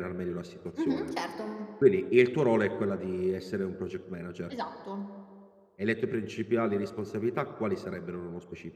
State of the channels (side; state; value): both; identical; correlation 1.00